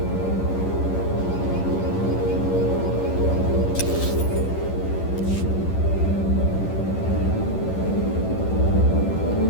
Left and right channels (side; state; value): right; late; 11 ms